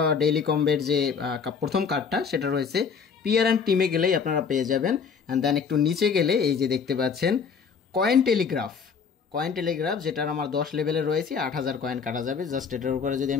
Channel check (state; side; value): quieter; right; 6.0 dB